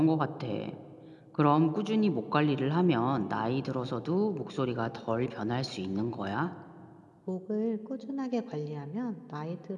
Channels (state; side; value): identical; both; correlation 1.00